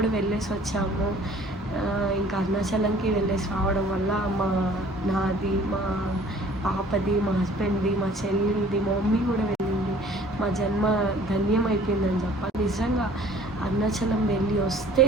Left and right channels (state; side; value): normal; both; correlation 0.53